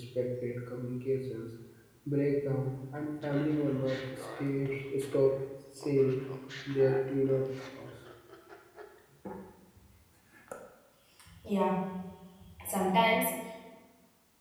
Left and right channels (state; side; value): identical; both; correlation 1.00